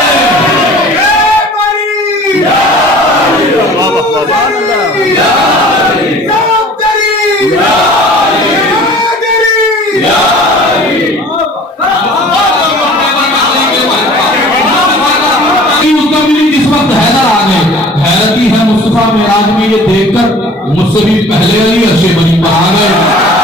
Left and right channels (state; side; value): normal; both; correlation 0.46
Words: मेराज में ये देखकर मुझसे भी पहले अली अर्शे बनी पर आ गए।